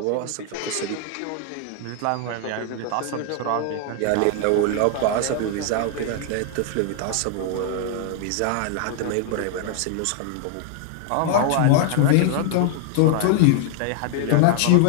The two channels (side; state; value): both; different; correlation 0.00